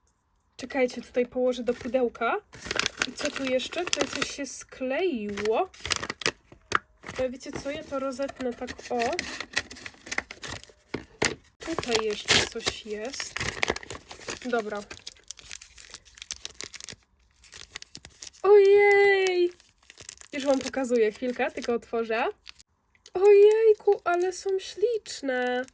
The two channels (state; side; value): identical; both; correlation 1.00